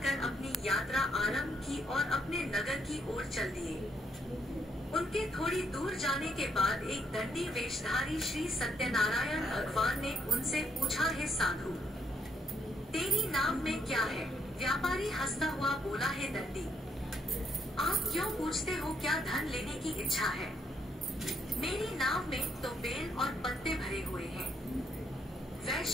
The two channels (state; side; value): normal; both; correlation 0.74